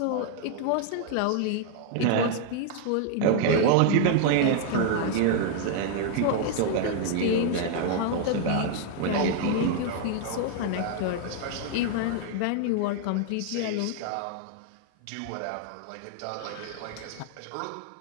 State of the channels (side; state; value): both; different; correlation 0.00